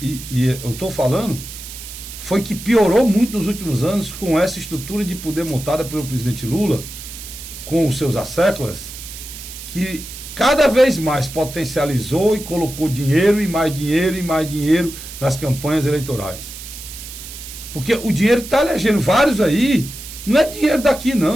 eu estou falando, foi que piorou muito nos últimos anos com essa estrutura de poder montada pelo presidente Lula, com os seus asséculas, que cada vez mais potencializou e colocou dinheiro e mais dinheiro e mais dinheiro nas campanhas eleitorais. Porque o dinheiro está elegendo vários aí, não é dinheiro daqui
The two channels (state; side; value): noise; right; hiss, 12 dB below the sound